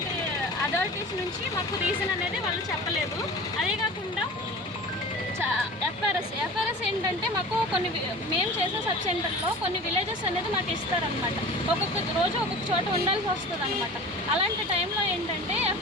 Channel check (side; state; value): both; normal; correlation 0.37